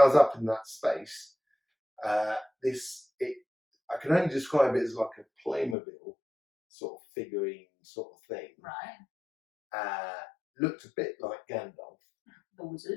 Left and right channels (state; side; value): drops out; right; at 5.8 s